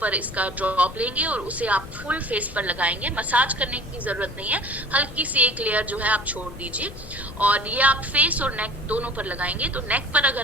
इसका ड्रॉप लेंगे और उसे आप फुल फेस पर लगाएंगे। मसाज करने की जरूरत नहीं है, हल्की सी एक लेयर जो है आप छोड़ दीजिए और ये आप फेस और नेक दोनों पर लगाएंगे। तो नेक पर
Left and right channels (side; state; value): left; noise; rumble, 14 dB below the sound